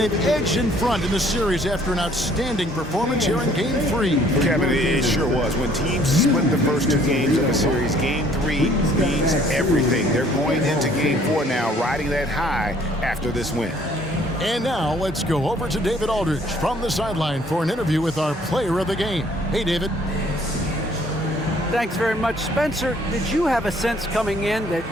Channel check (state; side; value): normal; both; correlation 0.59